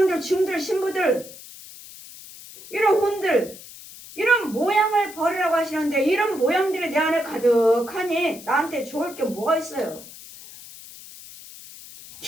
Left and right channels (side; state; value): left; noise; hiss, 17 dB below the sound